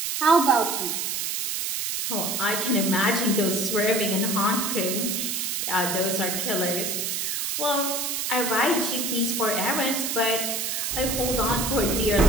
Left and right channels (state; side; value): noise; right; hiss, 1 dB below the sound